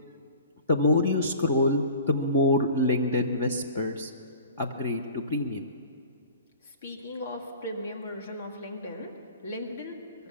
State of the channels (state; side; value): inverted; both; correlation -0.42